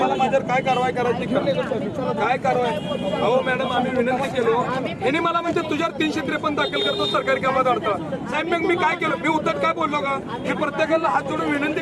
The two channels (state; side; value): identical; both; correlation 1.00